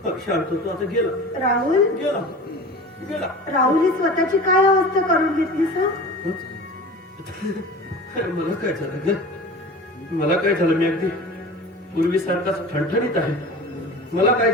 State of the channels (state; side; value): normal; both; correlation 0.36